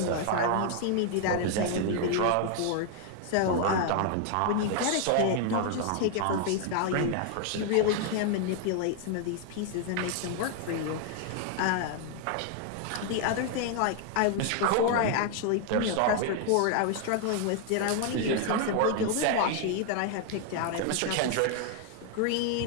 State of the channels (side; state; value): both; different; correlation 0.00